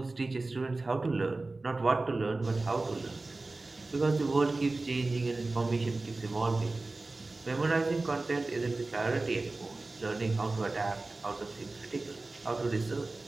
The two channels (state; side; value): quieter; left; 3.3 dB